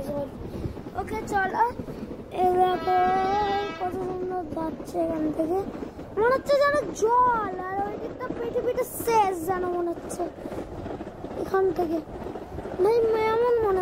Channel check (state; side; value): identical; both; correlation 1.00